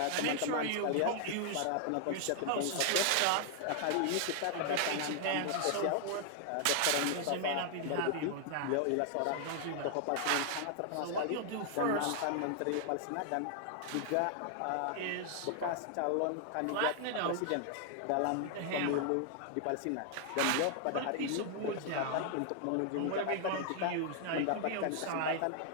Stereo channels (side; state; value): both; different; correlation 0.00